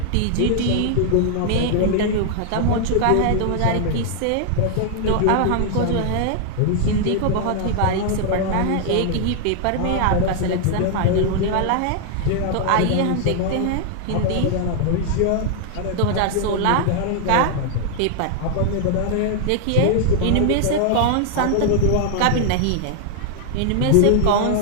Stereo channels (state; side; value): different; both; correlation 0.00